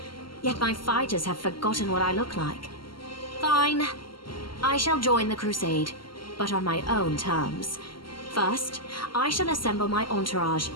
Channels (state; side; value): late; right; 0.73 ms